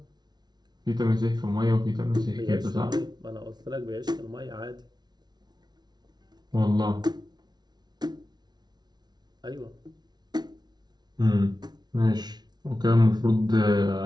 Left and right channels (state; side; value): late; left; 0.20 ms